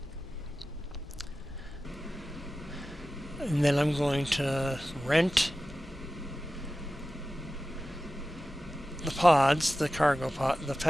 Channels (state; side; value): normal; both; correlation 0.95